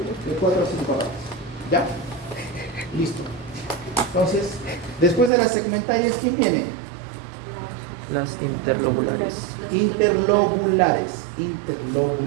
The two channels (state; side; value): drops out; left; at 5.3 s